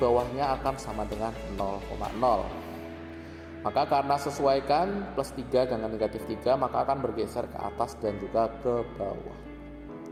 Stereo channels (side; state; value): both; identical; correlation 1.00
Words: akan sama dengan 0,0. Maka karena sesuaikan plus 3 dengan negatif 3, maka akan bergeser ke atas dan juga ke bawah.